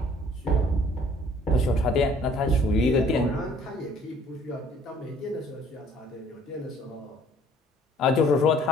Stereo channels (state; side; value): normal; both; correlation 0.57